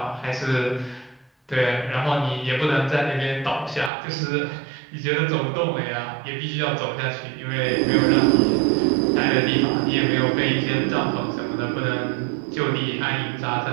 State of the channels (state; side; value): drops out; left; at 3.9 s